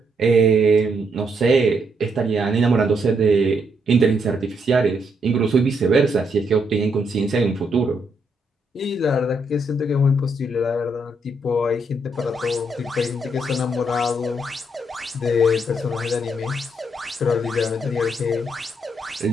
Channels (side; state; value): both; normal; correlation 0.76